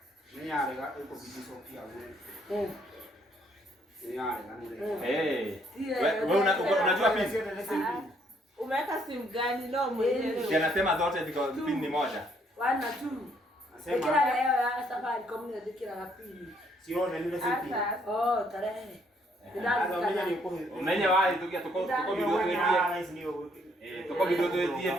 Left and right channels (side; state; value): both; normal; correlation 0.68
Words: Ni arega iko bidiso pia wewe. Ni arega ni. Wewe unajua pini? umeweka simu gani? No mwenyewe. Anasema zote ziko pini ni moja. 1 na 2. Nasema kila leo ya safari community kila la pili. Sio ndio ile simu. Oh, tarehe. Umenya wapi tukia tuko video tuetie. Tuko video tuetie